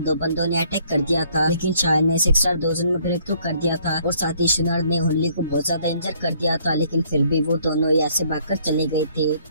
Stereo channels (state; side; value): inverted; both; correlation -0.63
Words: बंदों ने अटैक कर दिया था, लेकिन शायद ने 6 स्टार डोजन में ब्रेक थ्रू कर दिया था। और साथ ही शुनर ने हुनली को बहुत ज्यादा इंजर कर दिया था, लेकिन फिर भी वो दोनों यहाँ से भागकर चले गए थे।